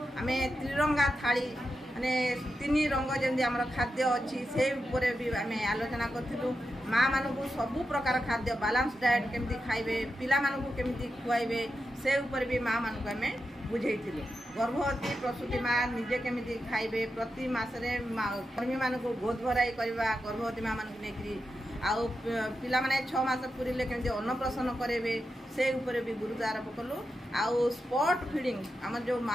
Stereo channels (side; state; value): both; normal; correlation 0.88